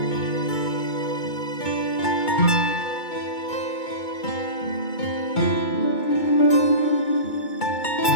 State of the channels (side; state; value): right; late; 2.2 ms